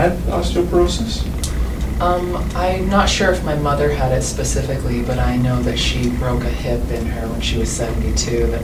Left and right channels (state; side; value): identical; both; correlation 1.00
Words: osteoporosis? I'm not sure if my mother had it specifically, but I know that she broke a hip in her when she was 72